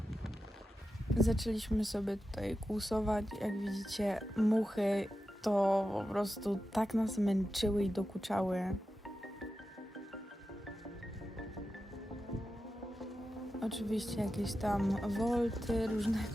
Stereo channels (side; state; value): both; normal; correlation 0.91